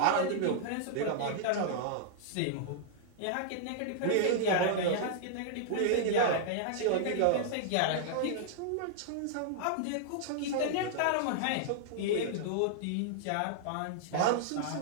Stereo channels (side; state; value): both; different; correlation -0.01